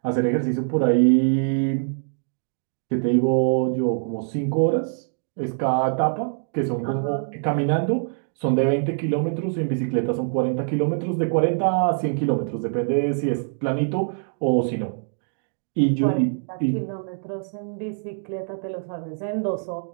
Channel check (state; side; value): silent; left; digital silence